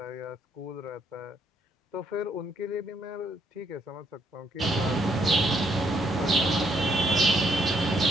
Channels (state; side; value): normal; both; correlation 0.72